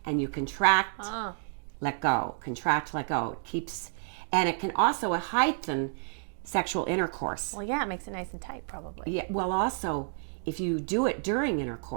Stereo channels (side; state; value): left; silent; 58 dB below the other